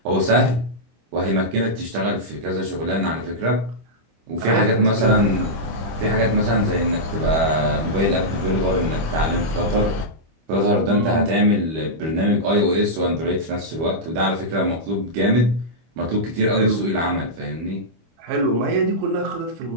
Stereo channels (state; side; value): late; left; 25 ms